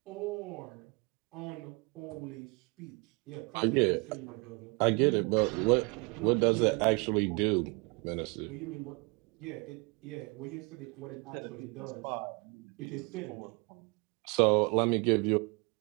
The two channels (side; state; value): left; quieter; 30.5 dB